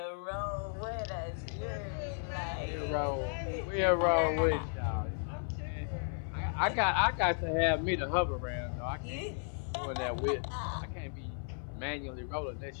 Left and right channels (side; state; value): right; silent; 55 dB below the other